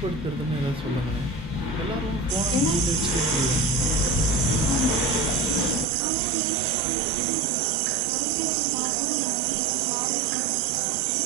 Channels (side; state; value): left; drops out; at 5.9 s